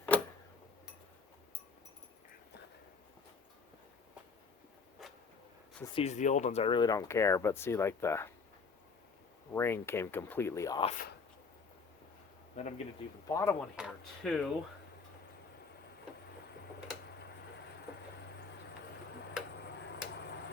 Since these are the old ones, I really don't care, but see, like, the ring came completely off. Then I'm going to do the bottom one here too.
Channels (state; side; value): quieter; right; 4.8 dB